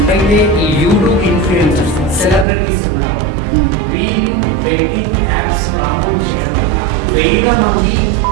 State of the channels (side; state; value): left; drops out; at 2.5 s